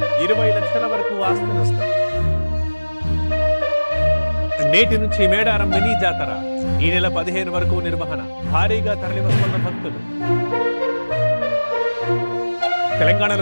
20 లక్షల వరకు ఆస్తి నష్టం నేటి నుంచి మేడారం మినీ జాతర ఈ నెల 15 వరకు నిర్వహణ భారీగా తరలివస్తున్న భక్తులు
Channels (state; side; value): inverted; both; correlation -1.00